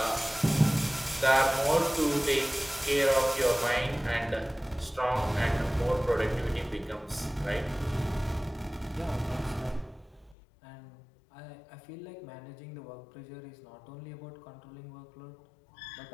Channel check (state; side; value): drops out; right; at 10.4 s